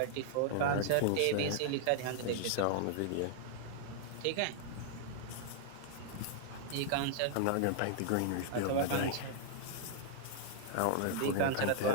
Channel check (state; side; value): different; both; correlation -0.01